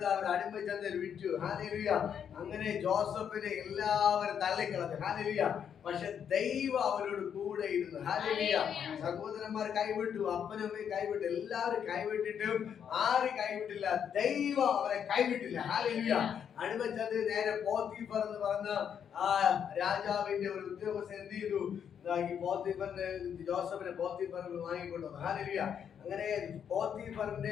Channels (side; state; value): right; quieter; 8.2 dB